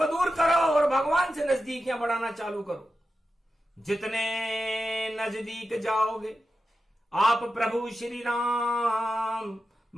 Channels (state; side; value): normal; both; correlation 0.91